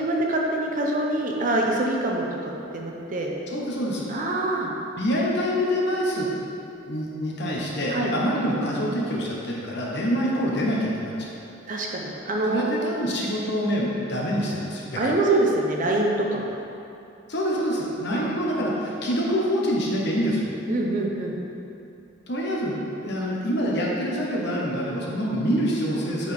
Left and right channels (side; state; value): both; normal; correlation 0.43